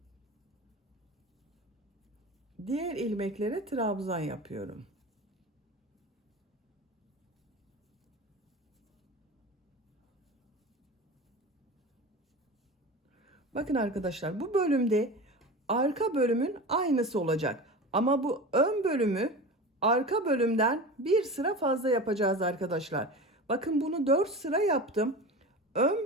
Diğer ilmeklere trabzan yapıyorum. Bakın arkadaşlar, bu bölümde arka bölümün aynısı olacak. Ama bu ön bölümü arka bölümden bir sıra fazla yapacağız arkadaşlar. Bakın bunu 4 sıra yaptım.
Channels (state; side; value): normal; both; correlation 0.31